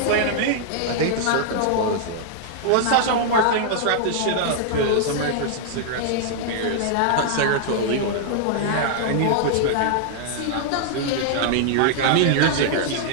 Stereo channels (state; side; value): different; both; correlation -0.01